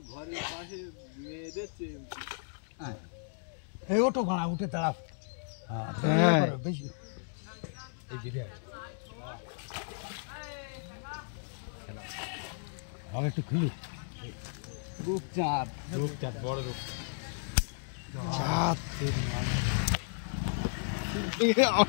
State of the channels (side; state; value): right; silent; digital silence